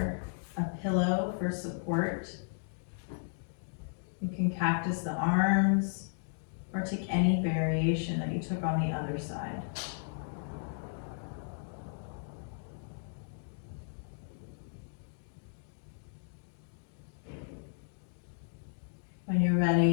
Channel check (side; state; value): right; silent; digital silence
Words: a pillow for support. You can cactus the arms or take any variation that you took on the other side. When you're